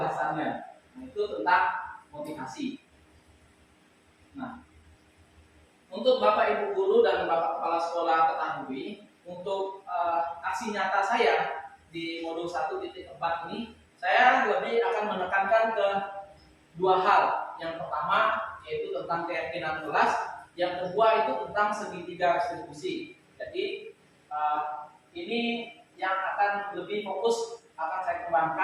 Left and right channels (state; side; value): identical; both; correlation 1.00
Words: Nah, itu tentang motivasi. Nah, untuk Bapak Ibu guru dan Bapak Kepala Sekolah ketahui, untuk aksi nyata saya di modul 1.4 ini, saya lebih akan menekankan ke dua hal. Yang pertama yaitu tentang keyakinan kelas, yang kedua itu tentang segitiga restitusi. Jadi ini yang akan lebih fokus akan saya